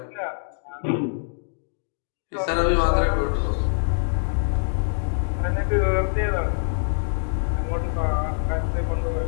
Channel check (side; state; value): right; silent; digital silence